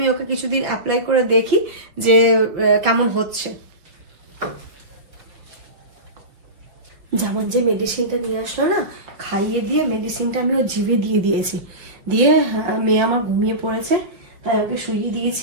ওকে কিছুদিন অ্যাপ্লাই করে দেখি যে কেমন হচ্ছে। যেমন যে মেডিসিনটা নিয়ে আসলো না, খাইয়ে দিয়ে মেডিসিনটা আমি ওর জিভে দিয়ে দিয়েছি, দিয়ে মেয়ে আমার ঘুমিয়ে পড়েছে, তাই ওকে শুইয়ে দিয়েছি।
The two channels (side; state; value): left; late; 5.5 ms